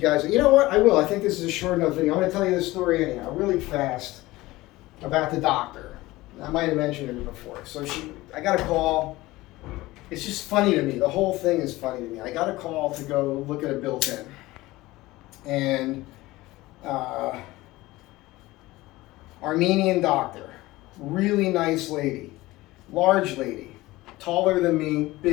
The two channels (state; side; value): quieter; right; 19.0 dB